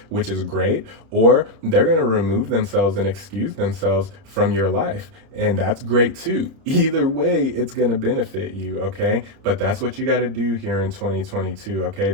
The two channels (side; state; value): left; late; 31 ms